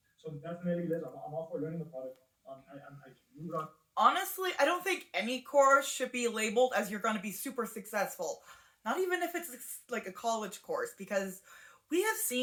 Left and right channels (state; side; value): identical; both; correlation 1.00